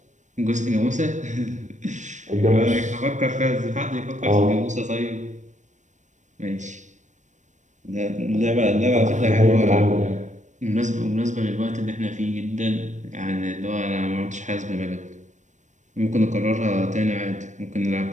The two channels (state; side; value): late; left; 0.35 ms